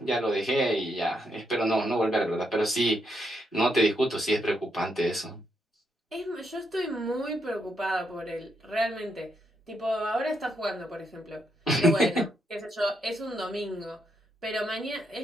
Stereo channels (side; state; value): both; normal; correlation 0.79